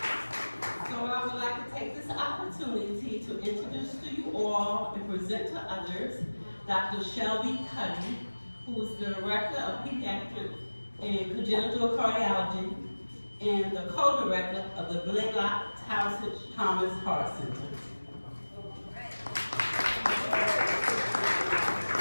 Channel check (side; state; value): both; inverted; correlation -1.00